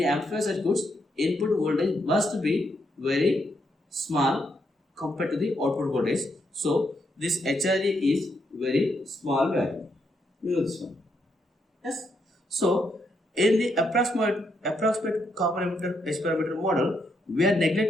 amplifier circuits, input voltage must be very small compared to the output voltage. So this HRE is very small value. You know this one. Yes. So in the approximate common emitter H parameter model, we are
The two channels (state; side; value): normal; both; correlation 0.78